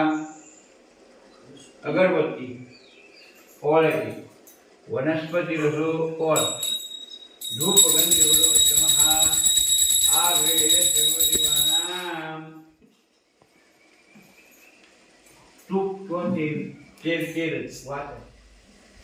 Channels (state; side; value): identical; both; correlation 1.00